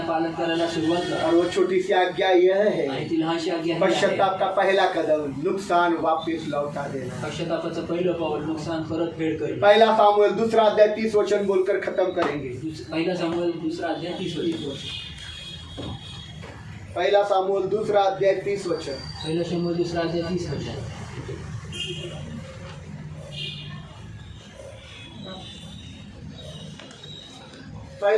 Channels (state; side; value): identical; both; correlation 1.00